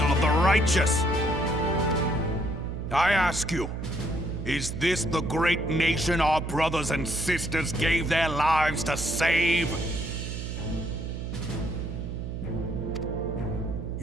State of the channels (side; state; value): right; noise; hum, 5 dB below the sound